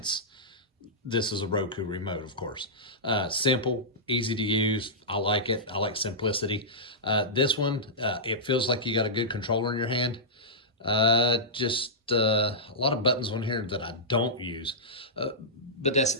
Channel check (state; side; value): normal; both; correlation -0.14